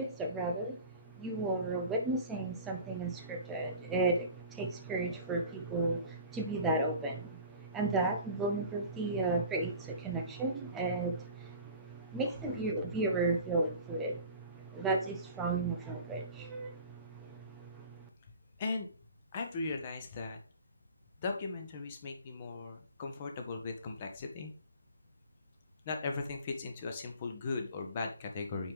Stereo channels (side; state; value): both; inverted; correlation -0.38